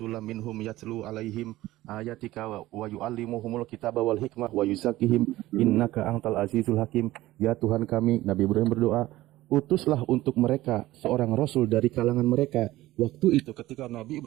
minhum yatlu alaihim ayatika wa yu'allimuhumul kitaba wal hikmah wa yuzakkihim innaka antal azizul hakim. Ya Tuhan kami, Nabi Ibrahim berdoa, utuslah untuk mereka seorang rasul dari kalangan mereka. Waktu itu ketika Nabi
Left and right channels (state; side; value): quieter; left; 16.6 dB